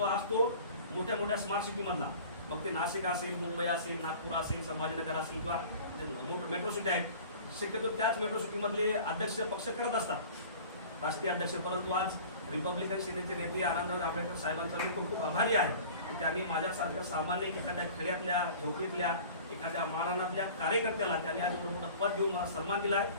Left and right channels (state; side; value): inverted; both; correlation -0.43